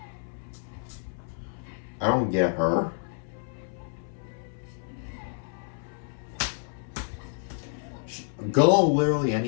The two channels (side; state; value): right; silent; 59 dB below the other